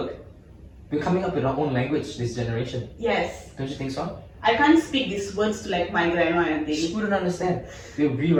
We're coming up with our own language this generation. Yes. Don't you think so? I can't speak these words to like my grandma and She things. wouldn't understand. We're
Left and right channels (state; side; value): identical; both; correlation 1.00